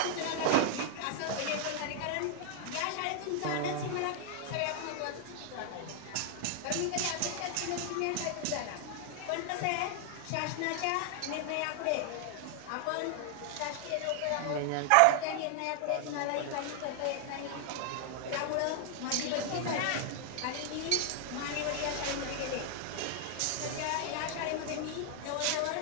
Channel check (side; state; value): both; different; correlation 0.00